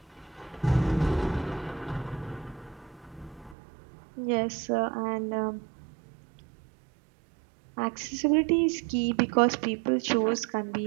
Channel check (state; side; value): drops out; left; at 3.6 s